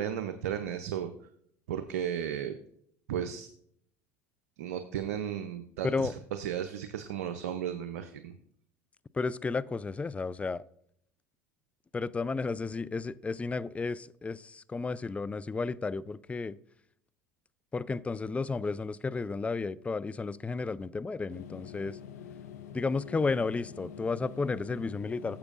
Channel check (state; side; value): normal; both; correlation 0.64